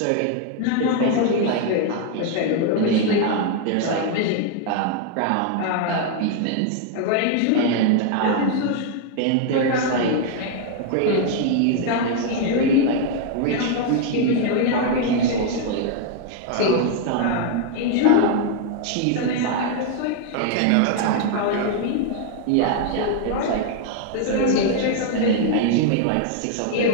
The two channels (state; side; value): different; both; correlation 0.00